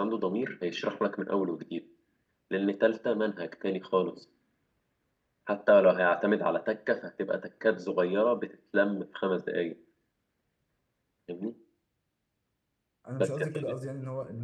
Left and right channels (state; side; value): identical; both; correlation 1.00